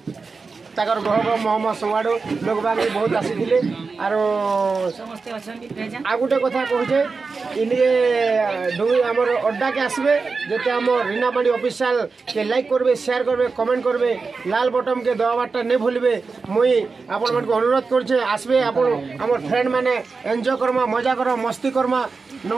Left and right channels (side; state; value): left; quieter; 4.5 dB